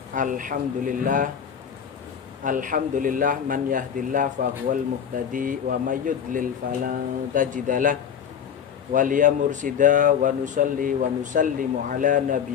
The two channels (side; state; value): right; quieter; 8.1 dB